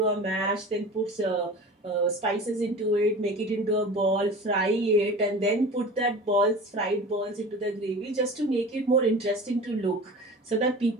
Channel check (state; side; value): normal; both; correlation 0.36